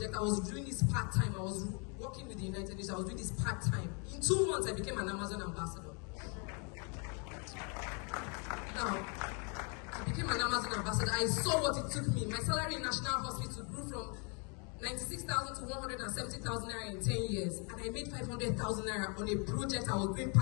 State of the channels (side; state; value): right; quieter; 35.9 dB